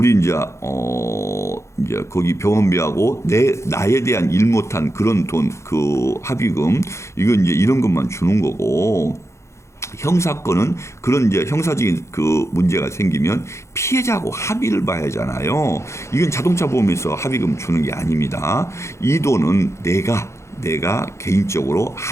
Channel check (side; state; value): right; late; 0.14 ms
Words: 이제 거기 병원비하고 나에 대한 일 못한 그런 돈, 합의금, 이건 이제 이런 것만 주는 거고, 형사건은 그런 이제 형사적인 문제가 생기면 피해자하고 합의를 봐야 하잖아요. 이건 자동차 보험에서 합의금 주는 게 아닙니다. 이 돈은 내가 개인적으로